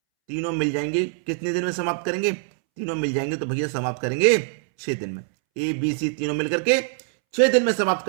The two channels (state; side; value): silent; left; 63 dB below the other